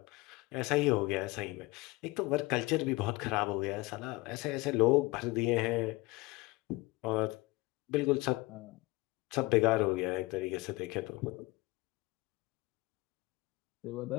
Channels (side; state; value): right; quieter; 22.1 dB